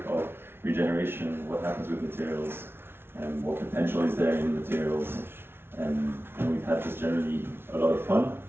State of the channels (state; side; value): late; left; 0.11 ms